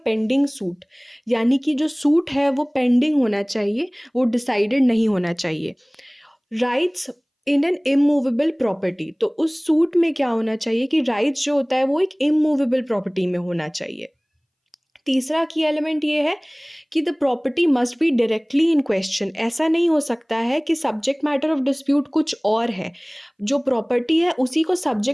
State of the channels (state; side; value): identical; both; correlation 1.00